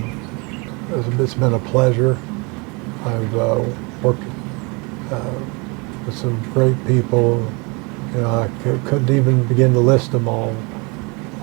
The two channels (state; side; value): quieter; left; 29.5 dB